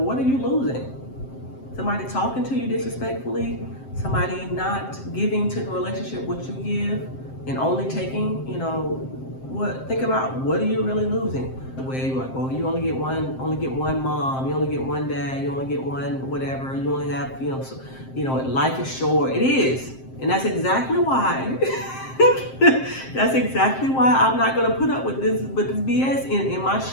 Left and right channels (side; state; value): right; late; 7.6 ms